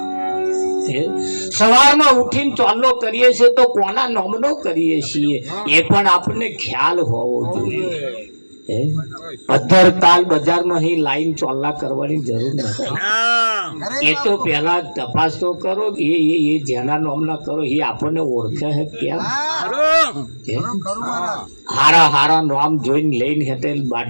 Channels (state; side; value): inverted; both; correlation -1.00